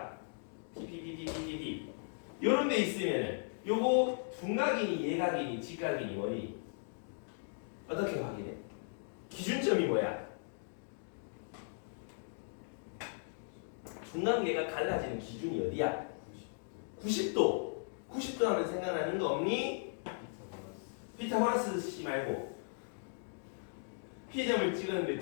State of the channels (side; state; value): right; silent; digital silence